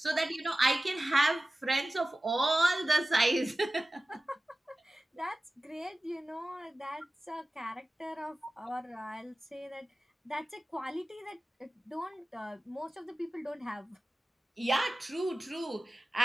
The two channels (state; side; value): normal; both; correlation 0.96